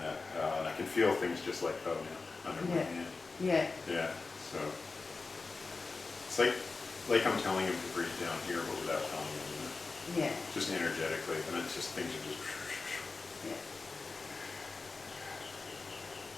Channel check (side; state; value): right; quieter; 4.0 dB